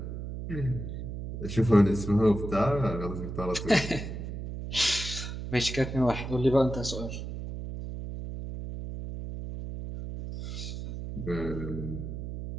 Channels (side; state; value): right; noise; hum, 7 dB below the sound